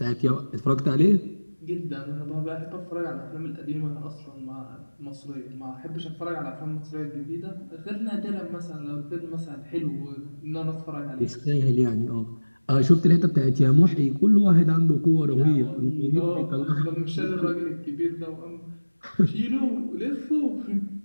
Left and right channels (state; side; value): inverted; both; correlation -1.00